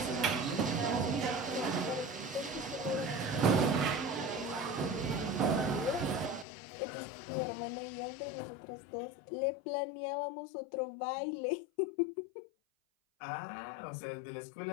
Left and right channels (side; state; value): right; drops out; at 6.5 s